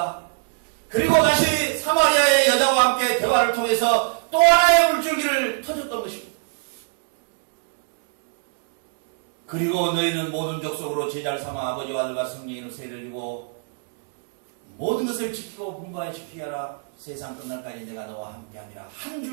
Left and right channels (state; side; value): silent; left; digital silence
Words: 그리고 다시 사마리아의 여자와 함께 대화를 통해서 또 하나의 물줄기를 터졌던 것입니다. 그리고 너희는 모든 족속으로 제자를 삼아 아버지와 아들과 성령의 이름으로 세례를 주고 모든 것을 지키고 분부하여 지키게 하라. 세상 끝날까지 내가 너와 함께하리라. 한